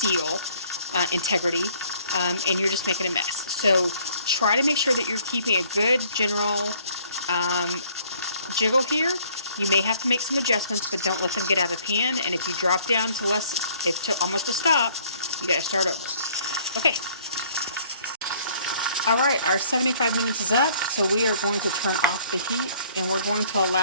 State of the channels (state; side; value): inverted; both; correlation -0.59